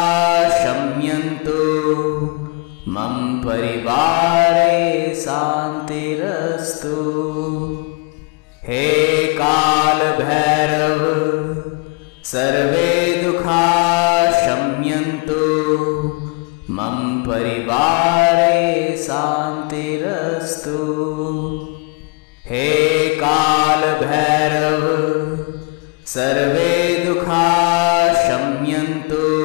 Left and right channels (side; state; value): right; quieter; 32.5 dB